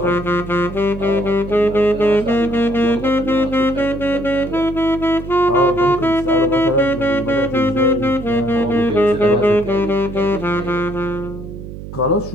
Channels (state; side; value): noise; right; hum, 11 dB below the sound